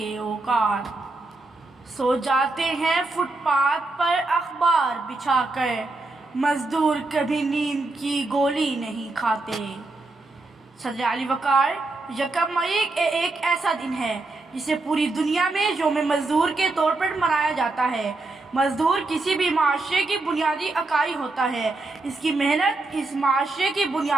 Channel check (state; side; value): quieter; left; 3.2 dB